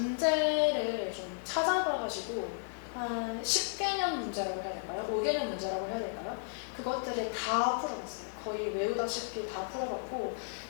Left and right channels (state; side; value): silent; right; digital silence